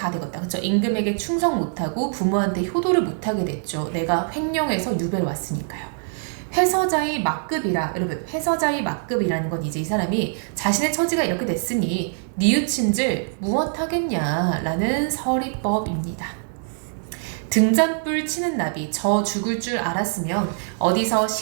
되겠다. 그쵸? 임금에게 충성 못하고 부모한테 효도를 못하게 됐죠. 내가 횡령해서 유배를 왔으니까요. 회서자의 막급이라. 여러분 회서자의 막급이라는 건 이제 이 사람이 자신의 처지가 이렇게 됐으니 뉘우친들 무엇하겠냐 라는 서리법입니다. 등잔불 치는 나비. 저 죽을 줄 알았으면 어디서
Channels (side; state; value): left; silent; digital silence